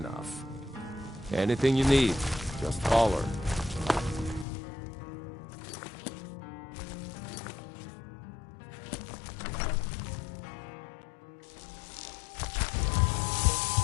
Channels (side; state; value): right; drops out; at 4.5 s